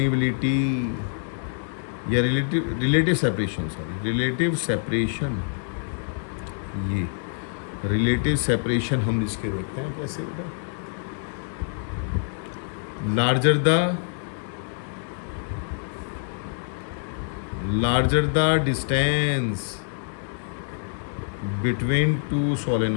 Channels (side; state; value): right; silent; 61 dB below the other